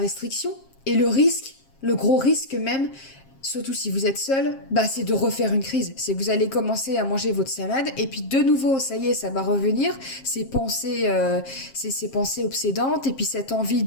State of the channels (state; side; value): late; right; 7.5 ms